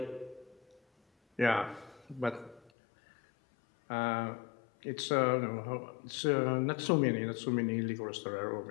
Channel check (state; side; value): drops out; right; at 2.7 s